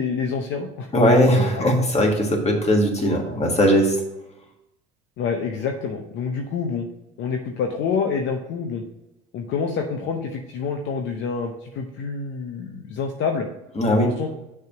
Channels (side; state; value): both; normal; correlation 0.41